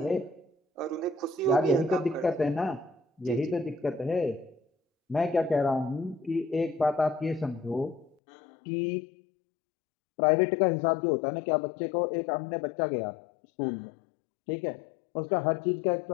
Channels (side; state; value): right; drops out; at 8.2 s